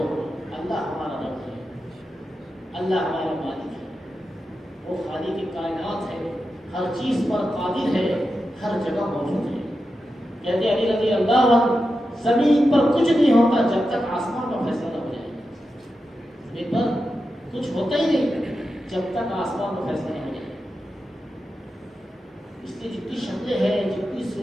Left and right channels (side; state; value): both; normal; correlation 0.90